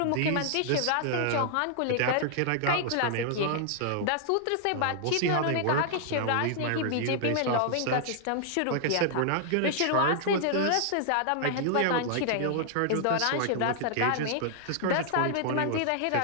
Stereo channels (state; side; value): different; both; correlation -0.01